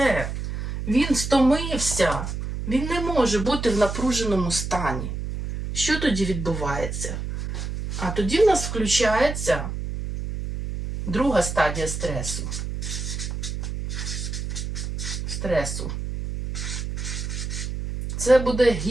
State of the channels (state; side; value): noise; right; hum, 5 dB below the sound